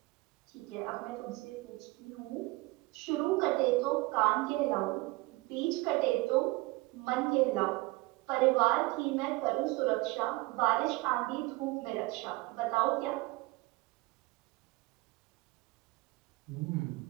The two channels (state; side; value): quieter; left; 22.4 dB